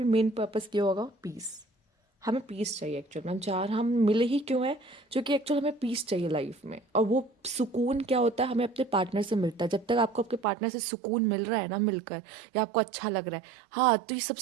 मेन पर्पस क्या होगा, पीस। हमें पीस चाहिए एक्चुअल में, हम मिले ही क्यों हैं, क्योंकि एक्चुअल हमें पीस चाहिए लाइफ में। और वो सुकून क्या होता है, हमें अपने पार्टनर से मिलता है। जब तक आपको आपके पार्टनर से सुकून मिल रहा है ना मिलकर, या आपको अच्छा लग रहा है, हाँ, तो ये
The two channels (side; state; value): left; drops out; at 10.5 s